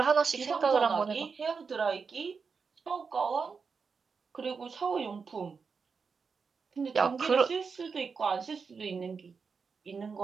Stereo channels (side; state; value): left; quieter; 5.3 dB